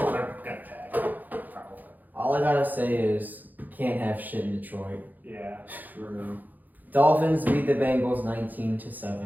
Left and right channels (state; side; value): late; left; 0.084 ms